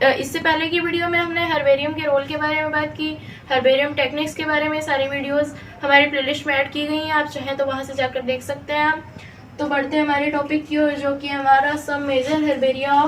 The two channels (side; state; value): both; identical; correlation 1.00